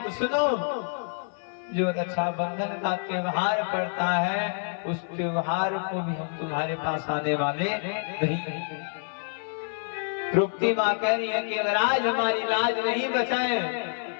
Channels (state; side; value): silent; right; 60 dB below the other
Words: तो सुनो, जो रक्षाबंधन का त्योहार पड़ता है उस त्योहार को भी हम तुम्हारे पास आने वाले नहीं। तृप्ति माँ कह रही है कि अगर आज हमारी लाज नहीं बचाए